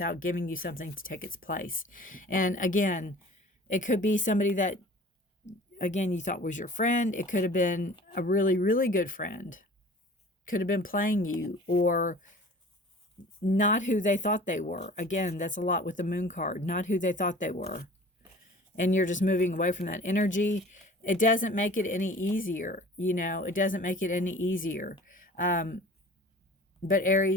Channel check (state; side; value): normal; both; correlation 0.44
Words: giving you something to take its place. And again, it could be somebody that, again, you thought was your friend. It could have been a really, really good friend. Could have been playing you, or not who they thought they were. Again, that's a lot with the moon card. Not who they thought they were. And you're just moving away from that energy. It doesn't make it any easier. You know, it doesn't make it any easier. But